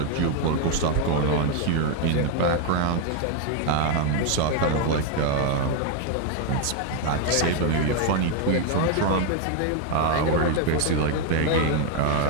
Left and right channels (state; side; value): different; both; correlation 0.00